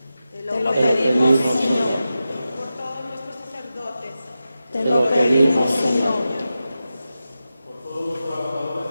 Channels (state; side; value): inverted; both; correlation -0.92